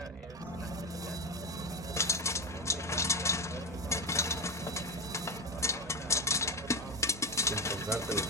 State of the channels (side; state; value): both; normal; correlation 0.14